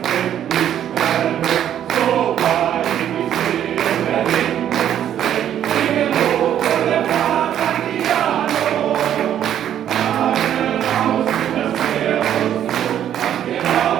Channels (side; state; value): left; quieter; 10.4 dB